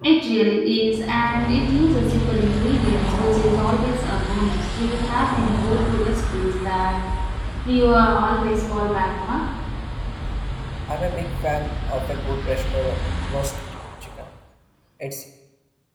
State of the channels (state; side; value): identical; both; correlation 1.00